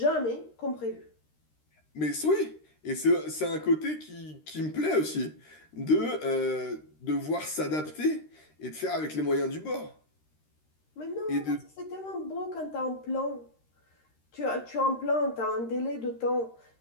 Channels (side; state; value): right; late; 13 ms